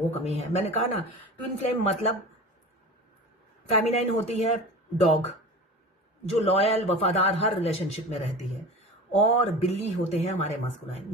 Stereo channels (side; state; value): both; normal; correlation 0.34